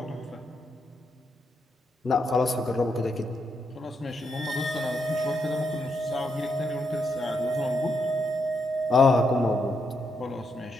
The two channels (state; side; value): normal; both; correlation 0.80